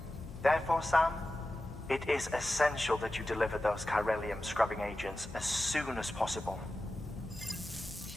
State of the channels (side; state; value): left; noise; hum, 15 dB below the sound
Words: Therefore, Sam, it is essential that you deliver those chiralium scrubbing agents as soon as possible.